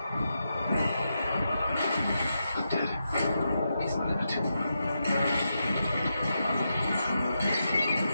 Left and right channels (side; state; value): both; inverted; correlation -0.86